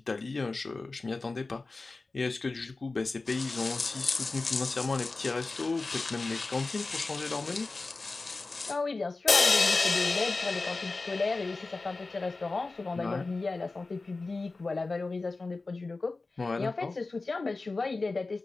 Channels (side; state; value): right; quieter; 3.6 dB